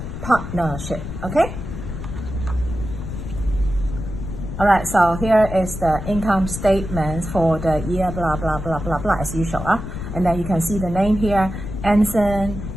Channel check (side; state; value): left; noise; rumble, 8 dB below the sound